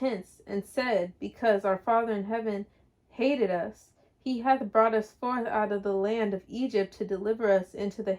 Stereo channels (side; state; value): both; identical; correlation 1.00